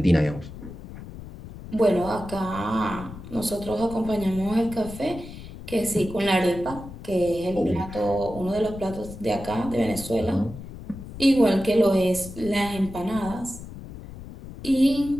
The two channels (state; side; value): noise; left; rumble, 13 dB below the sound